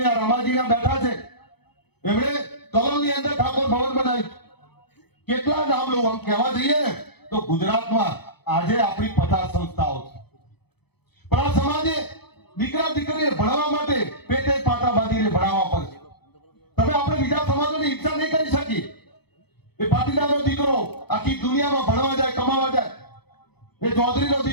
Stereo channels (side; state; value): right; late; 0.98 ms